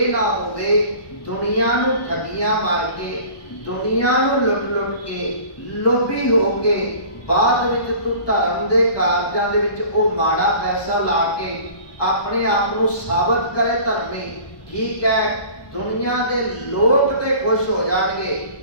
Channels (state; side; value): late; right; 1.2 ms